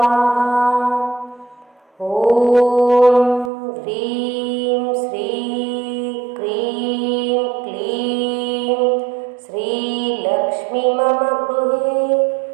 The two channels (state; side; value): drops out; left; at 3.5 s